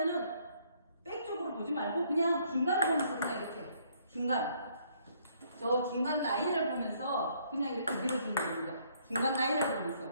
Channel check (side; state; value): both; inverted; correlation -0.66